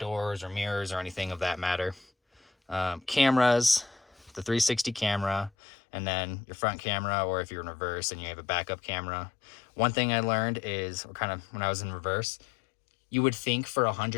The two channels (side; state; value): right; drops out; at 5.5 s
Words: or mirrors or anything of that matter. Cameras, the 360 camera, and then your front camera, or if you're in reverse and you have a backup camera. One thing I learned is, kind of when I was in reverse, you would think for